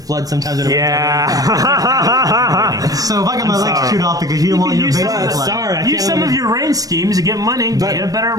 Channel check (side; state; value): left; late; 0.18 ms